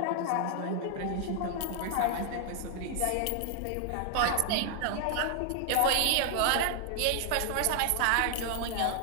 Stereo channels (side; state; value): both; different; correlation 0.00